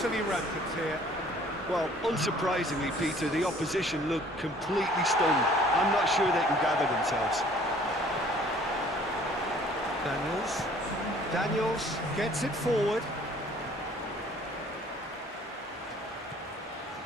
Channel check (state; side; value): normal; both; correlation 0.55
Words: rampant here. Well, unsurprisingly, Peter, the opposition looked completely stunned. I'm not sure they can gather themselves. Daniels gets it forward.